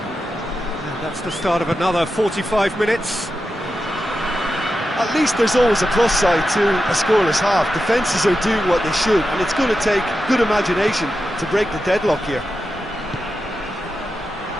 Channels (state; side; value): normal; both; correlation 0.90